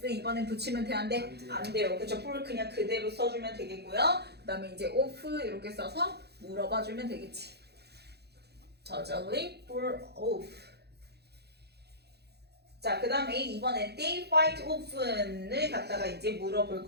이번엔 붙이면 돼, 안 돼? 안 돼요. 그쵸? for 그냥 그대로 써주면 되겠고요. 그 다음에 이제 of 이렇게 써서 물어봐주면 되겠지. does a leaf fall off. 자, 그 다음에 이번에 they fight often을 갖다가 이제 물어볼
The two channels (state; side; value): late; left; 0.48 ms